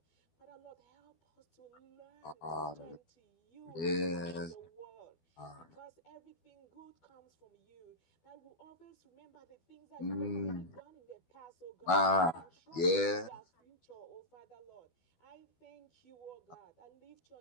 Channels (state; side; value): late; right; 12 ms